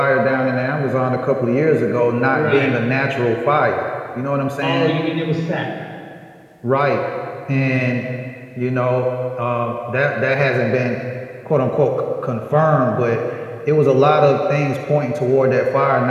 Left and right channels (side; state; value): both; identical; correlation 1.00